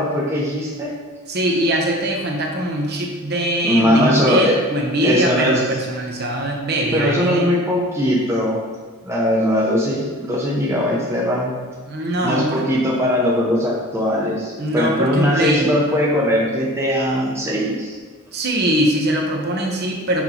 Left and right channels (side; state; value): both; normal; correlation 0.44